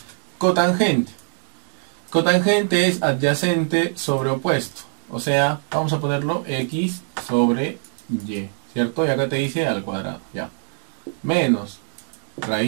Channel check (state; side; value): silent; left; digital silence